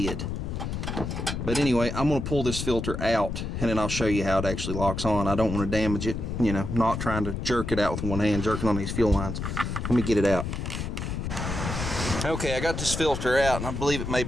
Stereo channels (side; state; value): left; noise; rumble, 4 dB below the sound